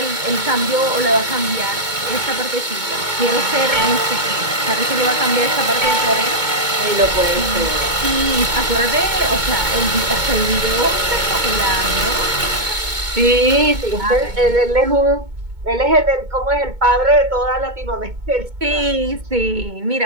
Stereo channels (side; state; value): left; late; 2.2 ms